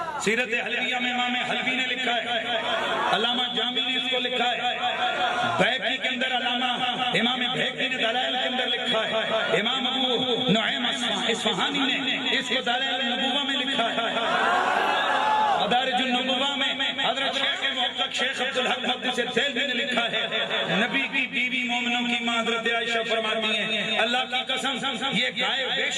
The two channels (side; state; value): both; identical; correlation 1.00